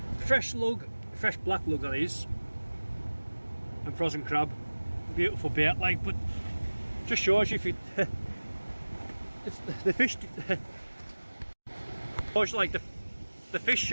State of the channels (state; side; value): inverted; both; correlation -1.00